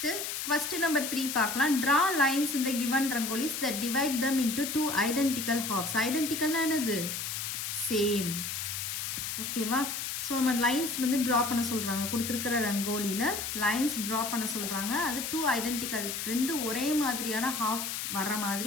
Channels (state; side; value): noise; left; hiss, 4 dB below the sound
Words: கொஸ்டின் நம்பர் 3 பார்க்கலாம். ட்ரா லைன்ஸ் இந்த given rangolis that divide them into 2 identical halves. ஐடென்டிக்கல்னா என்னது? சேம். ஓகேவா? ஸோ நம்ம லைன்ஸ் வந்து ட்ரா பண்ண சொல்கிறாங்க. கொடுத்துருக்கிற ரங்கோலியில் லைன்ஸ் ட்ரா பண்ண சொல்கிறாங்க. அது 2 ஐடென்டிக்கல், 2 ஒரே மாதிரியான ஹாஃப் வர்ற